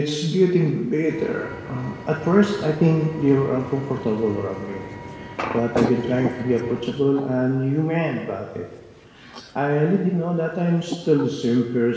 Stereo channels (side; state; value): both; identical; correlation 1.00